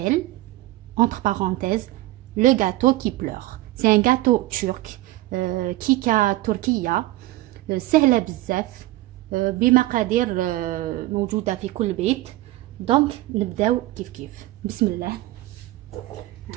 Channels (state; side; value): quieter; left; 17.3 dB